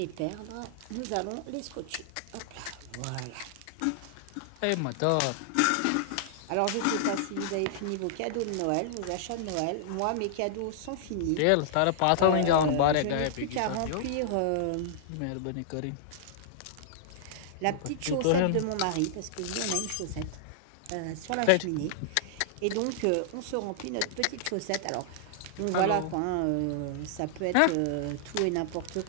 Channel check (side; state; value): both; different; correlation -0.01